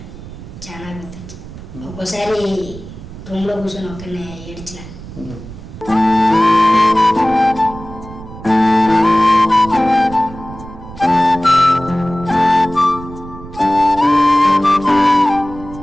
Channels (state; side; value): noise; right; rumble, 15 dB below the sound